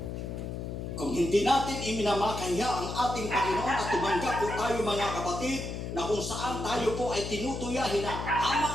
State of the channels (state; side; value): noise; left; hum, 6 dB below the sound